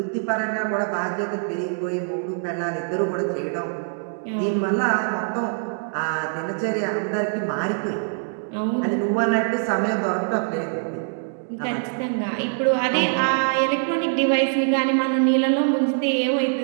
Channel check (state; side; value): silent; left; digital silence